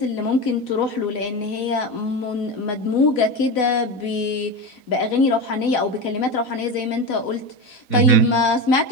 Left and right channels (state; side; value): late; right; 4.0 ms